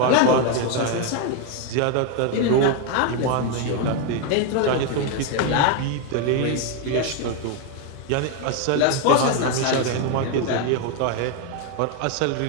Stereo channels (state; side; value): different; both; correlation 0.01